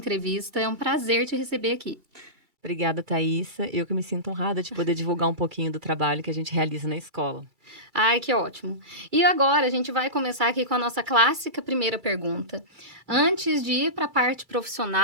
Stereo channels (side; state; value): left; late; 2.3 ms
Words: É um prazer te receber aqui. Obrigada, Thaísa. Eu que me sinto honrada de poder divulgar um pouquinho do trabalho que a gente realiza na escola. Ai, que ótimo. E agora a gente vai começar aqui com a nossa clássica primeira pergunta. Antes de ir para a parte